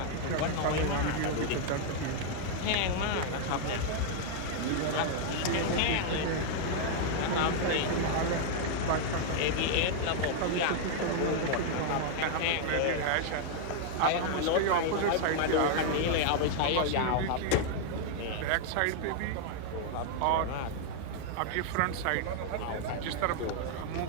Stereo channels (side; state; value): both; different; correlation 0.00